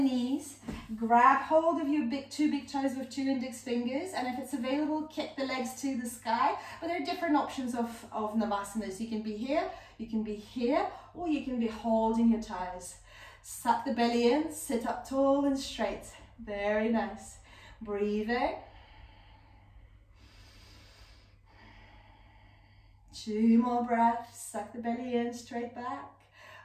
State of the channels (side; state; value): both; identical; correlation 1.00